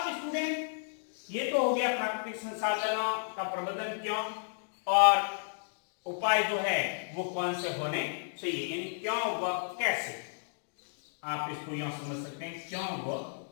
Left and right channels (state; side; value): silent; right; digital silence